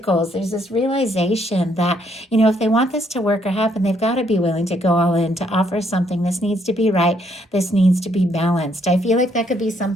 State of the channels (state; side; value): normal; both; correlation 0.70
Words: there's this realization that, if they want this to work or happen, they've got to be willing to go all in, to offer something. This needs to be right. This needs to be balanced. I feel like that could be